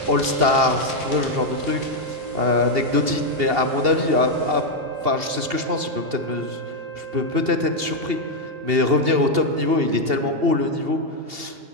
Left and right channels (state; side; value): late; left; 2.8 ms